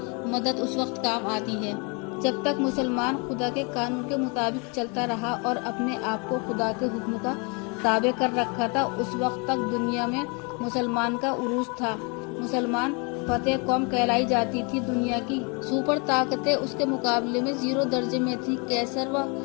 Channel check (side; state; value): right; quieter; 32.6 dB